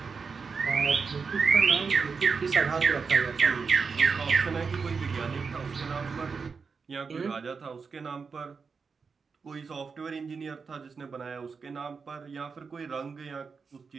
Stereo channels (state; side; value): quieter; left; 5.2 dB